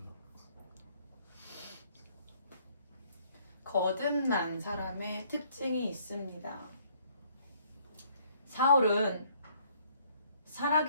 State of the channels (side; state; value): both; inverted; correlation -0.63